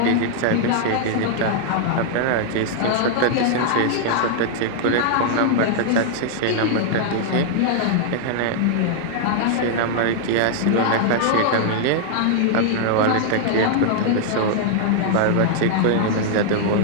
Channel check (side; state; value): both; different; correlation -0.01